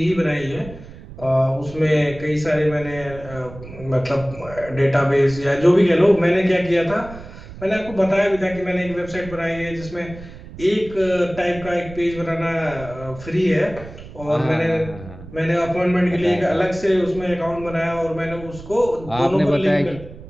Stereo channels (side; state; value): right; noise; rumble, 15 dB below the sound